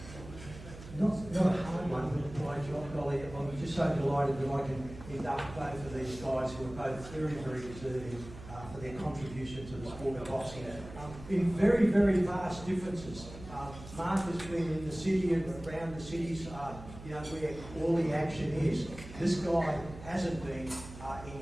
not a hard one, but a great job, Ollie. I'm just so delighted that I can induct both of these guys who are both very, very deserving for their contribution to the sport of boxing. In very, very vast differences. Mark has been in the city and around the cities, where all the action is. This guy hasn't been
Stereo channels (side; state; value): right; noise; hum, 14 dB below the sound